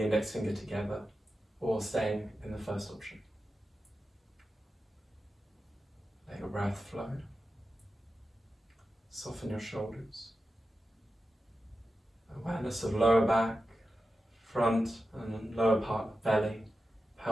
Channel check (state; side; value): normal; both; correlation 0.92